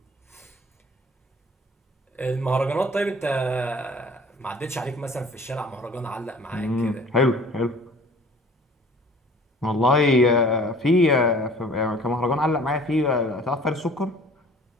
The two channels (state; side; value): normal; both; correlation 0.50